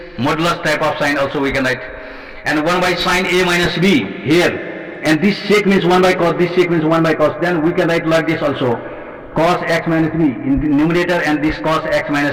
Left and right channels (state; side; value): identical; both; correlation 1.00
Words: modulus type of sign also we can write, and 1 by sin a minus b here, and this sec means 1 by cos, this sec means 1 by cos, then we can write like this also, cos x minus b in the numerator and this cos x